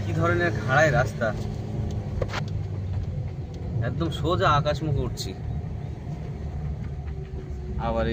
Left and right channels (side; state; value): both; identical; correlation 1.00